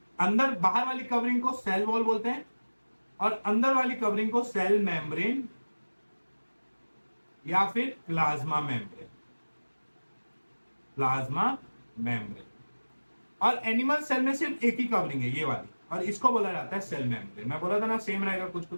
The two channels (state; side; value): inverted; both; correlation -1.00